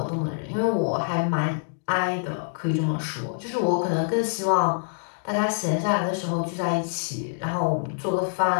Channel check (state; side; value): silent; right; digital silence